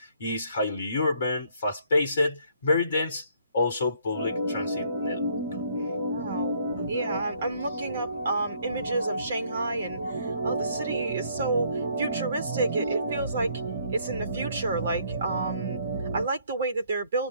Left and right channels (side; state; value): both; inverted; correlation -0.65